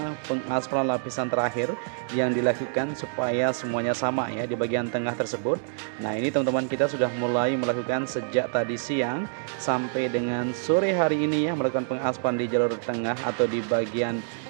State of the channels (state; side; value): silent; left; digital silence